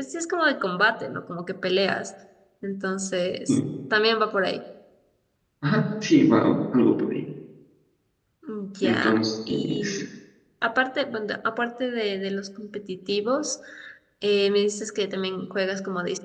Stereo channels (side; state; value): both; identical; correlation 1.00